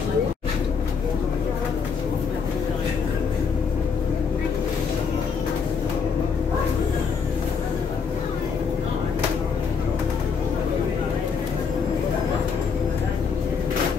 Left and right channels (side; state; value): right; quieter; 5.8 dB